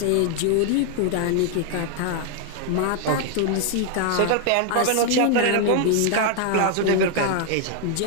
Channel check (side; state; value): both; different; correlation 0.00